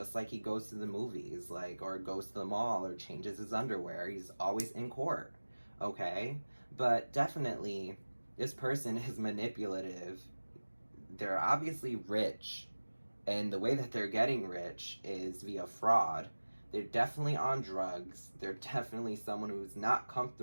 like he goes to the movies, like, or goes to the mall or changes his underwear. He's always in court, okay? But definitely this person is manipulative. They're obviously rich, and the way that they're getting rich is via fraud. They're definitely on drugs. They're definitely someone who's not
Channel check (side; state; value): both; inverted; correlation -1.00